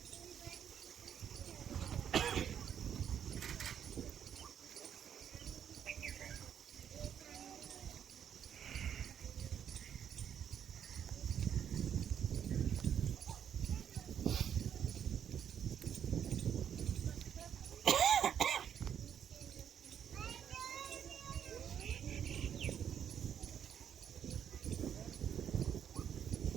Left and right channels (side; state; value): left; quieter; 8.8 dB